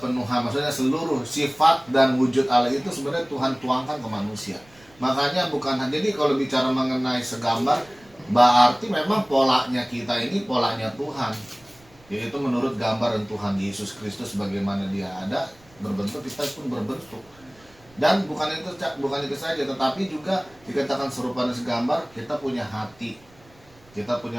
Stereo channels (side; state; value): right; noise; rumble, 28 dB below the sound